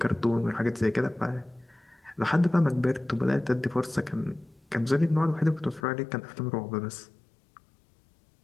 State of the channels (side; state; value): right; drops out; at 5.8 s